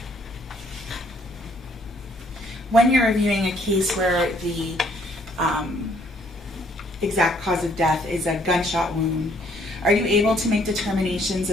When you're reviewing a case where the exact cause of death is a gunshot wound, are you able to make determinations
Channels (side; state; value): both; normal; correlation 0.65